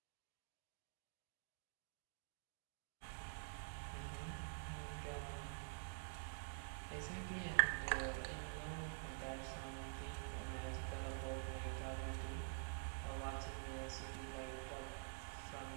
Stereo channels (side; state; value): left; silent; digital silence